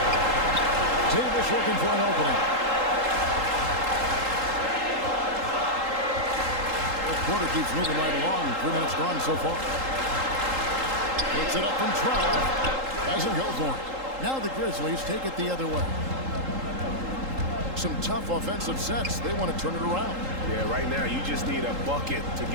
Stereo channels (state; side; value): late; left; 3.8 ms